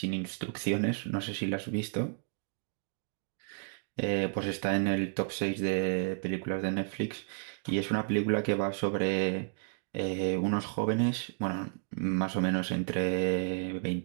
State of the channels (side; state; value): left; silent; digital silence